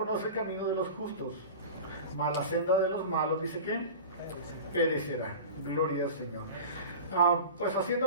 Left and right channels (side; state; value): both; inverted; correlation -0.33